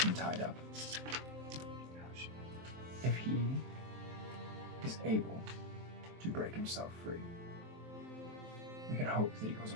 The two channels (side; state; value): left; late; 23 ms